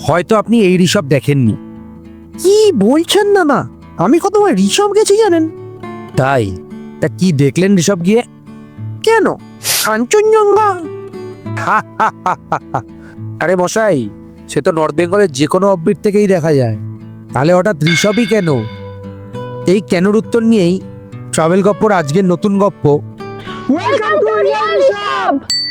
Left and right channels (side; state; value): both; identical; correlation 1.00